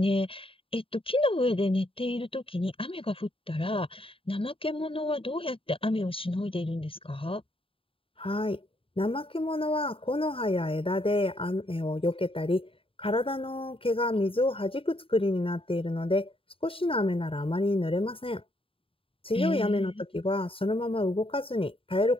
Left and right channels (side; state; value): right; late; 0.26 ms